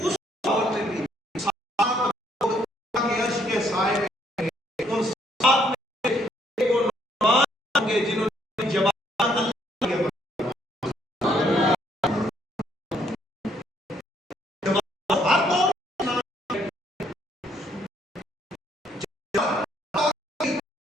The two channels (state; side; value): normal; both; correlation 0.68